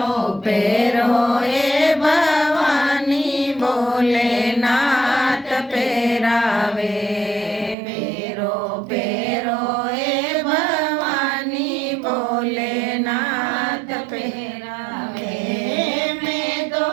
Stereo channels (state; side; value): drops out; left; at 7.8 s